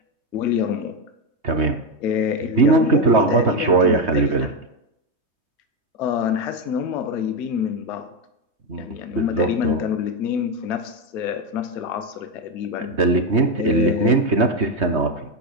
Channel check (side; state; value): left; late; 3.2 ms